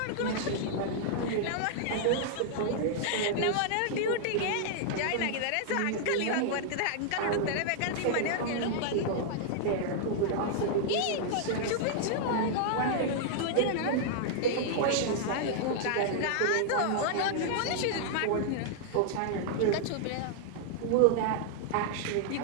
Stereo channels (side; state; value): both; different; correlation -0.01